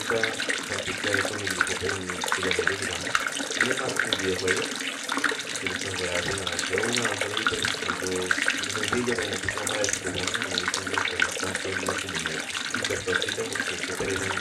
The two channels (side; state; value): both; identical; correlation 1.00